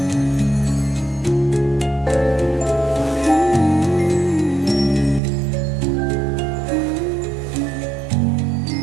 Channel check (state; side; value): drops out; left; at 5.2 s